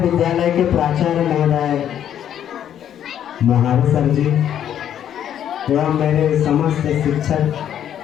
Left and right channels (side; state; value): right; quieter; 10.0 dB